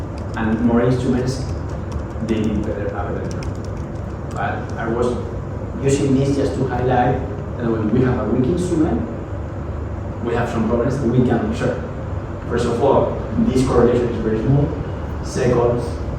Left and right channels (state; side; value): identical; both; correlation 1.00